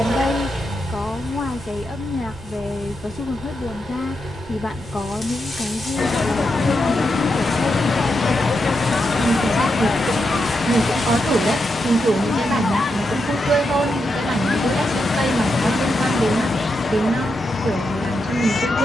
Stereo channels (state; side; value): normal; both; correlation 0.85